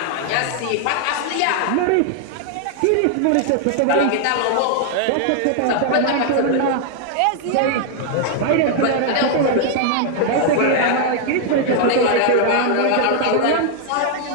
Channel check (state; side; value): different; both; correlation 0.00